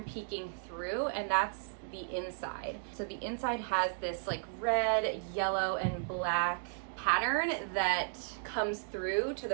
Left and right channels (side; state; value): left; silent; digital silence